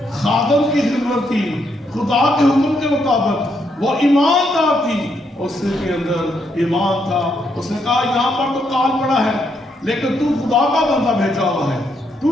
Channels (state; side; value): normal; both; correlation 0.77